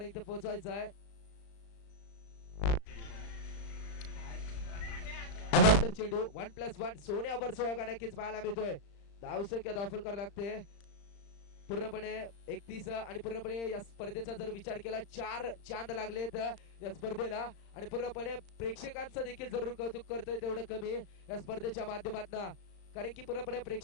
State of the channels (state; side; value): late; right; 35 ms